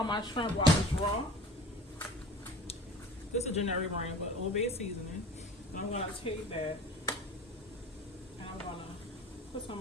my shrimp while it's raw. This is a generic brand, but Old Bay seasoning. And I'm going to take that and I'm going to put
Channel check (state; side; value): normal; both; correlation 0.40